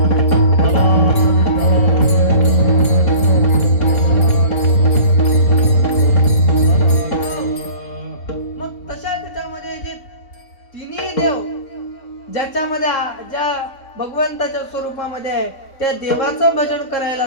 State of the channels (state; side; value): late; right; 4.1 ms